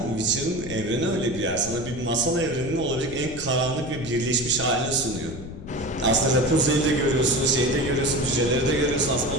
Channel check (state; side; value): noise; left; rumble, 11 dB below the sound